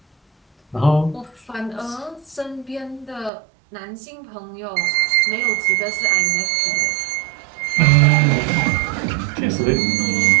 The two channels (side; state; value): left; drops out; at 3.3 s